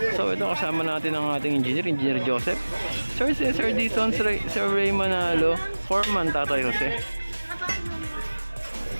So ito kasama natin ang ating Engineer Joseph, Sir Cesar Dizon, Sir Ray Manalo, Foreman Tatay Jose.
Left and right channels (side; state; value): both; inverted; correlation -1.00